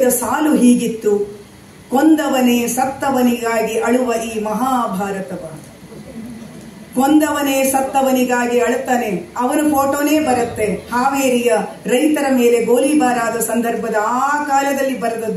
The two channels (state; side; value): identical; both; correlation 1.00